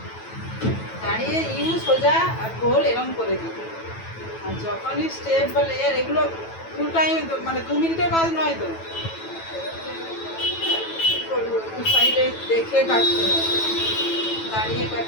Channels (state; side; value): late; right; 9.1 ms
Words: দাঁড়িয়ে ইউ সোজা আর গোল এরকম করে দিত। আর যখনই স্টেপ বা লেয়ার এগুলো ফুল টাইম, মানে 2 মিনিটের কাজ নয় তো, সাইডে দেখে কাটতে হবে, দাঁড়িয়ে